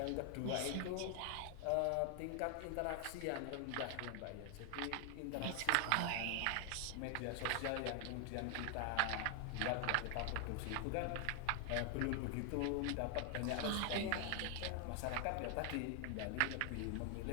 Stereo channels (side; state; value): both; different; correlation 0.00